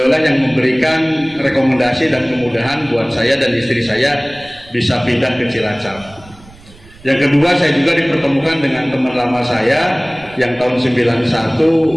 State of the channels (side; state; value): right; noise; rumble, 23 dB below the sound